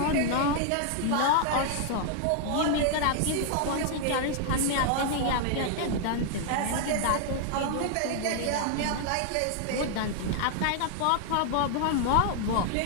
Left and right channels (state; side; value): different; both; correlation 0.00